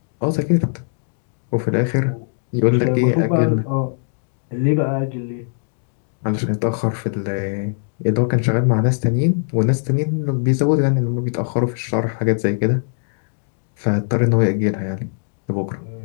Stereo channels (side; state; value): right; silent; digital silence